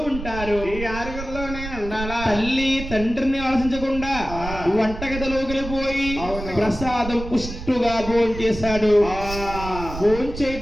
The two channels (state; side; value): noise; right; rumble, 9 dB below the sound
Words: ఉంటారు ఈ 6లో నేను ఉండాలా తల్లి తండ్రిని ఆలోచించకుండా వంటగదిలోకి వెళ్ళిపోయి ప్రసాదం పుష్టుగా భోజనం చేశాడు భోజనం